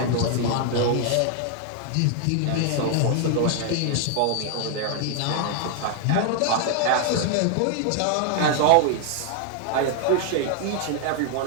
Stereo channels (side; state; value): both; different; correlation 0.00